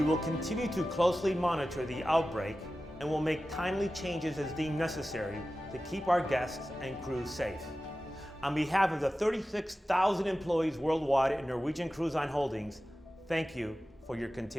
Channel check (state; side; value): normal; both; correlation 0.95